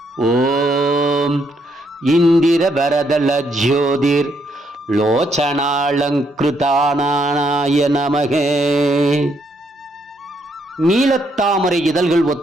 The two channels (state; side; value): normal; both; correlation 0.74